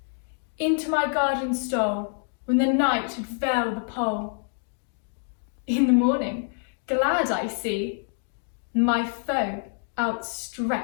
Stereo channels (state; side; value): silent; right; 55 dB below the other